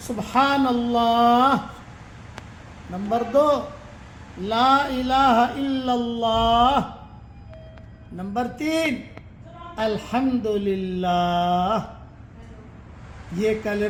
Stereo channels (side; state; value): both; identical; correlation 1.00